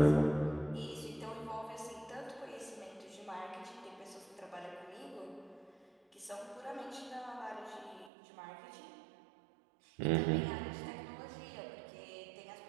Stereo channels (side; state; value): left; drops out; at 8.1 s